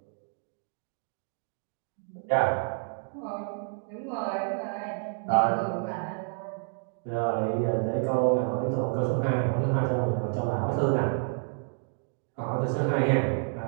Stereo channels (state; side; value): silent; left; 55 dB below the other